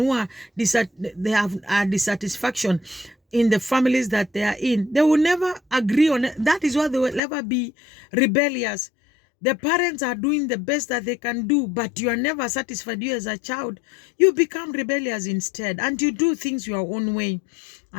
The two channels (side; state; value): right; drops out; at 7.2 s